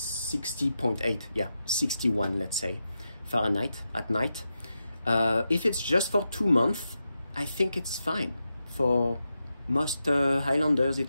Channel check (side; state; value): both; inverted; correlation -0.88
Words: yeah, 61, let's say, Fahrenheit at night. If it's just for 2 months, I think it's fine. For most Highlanders,